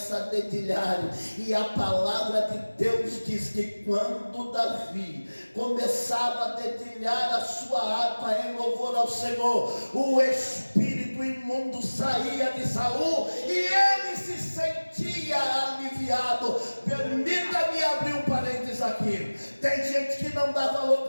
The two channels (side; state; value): both; inverted; correlation -1.00